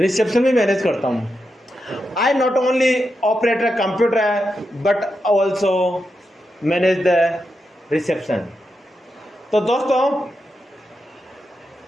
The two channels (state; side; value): normal; both; correlation 0.87